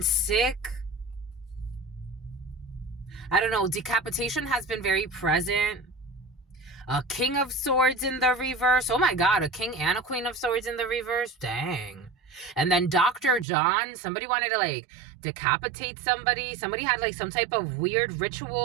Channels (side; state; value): left; drops out; at 13.5 s